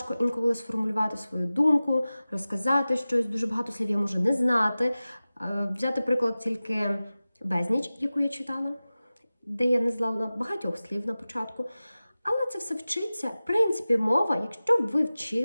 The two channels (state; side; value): inverted; both; correlation -0.96